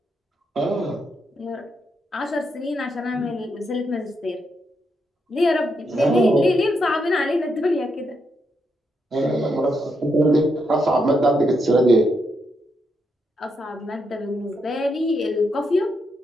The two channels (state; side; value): normal; both; correlation 0.81